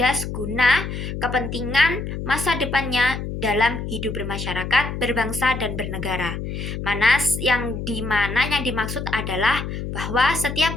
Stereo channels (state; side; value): noise; left; hum, 5 dB below the sound